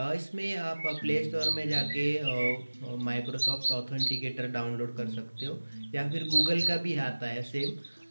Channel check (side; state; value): both; inverted; correlation -1.00